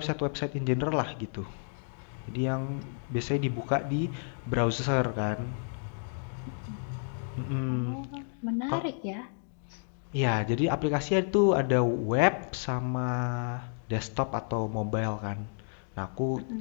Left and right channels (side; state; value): right; silent; digital silence